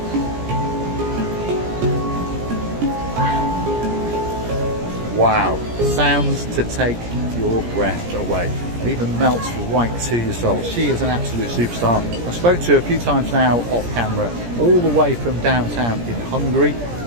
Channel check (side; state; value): left; late; 17 ms